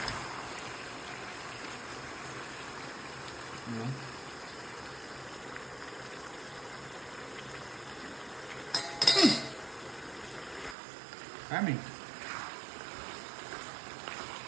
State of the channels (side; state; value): left; drops out; at 10.8 s